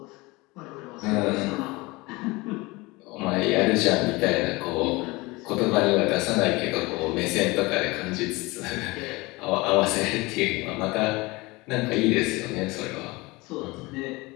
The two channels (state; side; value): quieter; right; 23.1 dB